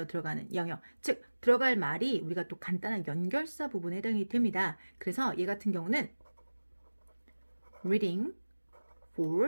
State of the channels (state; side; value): inverted; both; correlation -1.00